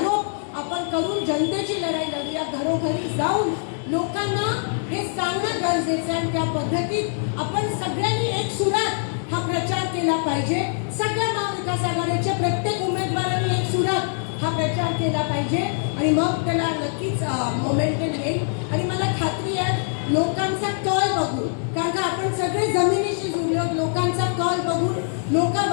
आपण करून जनतेची लढाई लढूया. घरोघरी जाऊन लोकांना हे सांगणं गरजेचं आहे. त्या पद्धतीत आपण सगळ्यांनी एक सुरात हा प्रचार केला पाहिजे. सगळ्या महाविकास आघाडीच्या प्रत्येक उमेदवारांनी एक सुरात हा प्रचार केला पाहिजे आणि मग त्याला नक्कीच मोमेंटम येईल. आणि मला खात्री आहे लोकांचा कल बघून, कारण का आपण सगळे जमिनीशी जुळलो, लोकांचा कल बघून लोक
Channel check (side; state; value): right; silent; digital silence